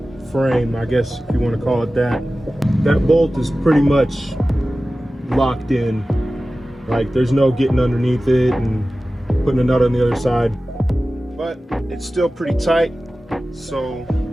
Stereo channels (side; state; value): both; normal; correlation 0.95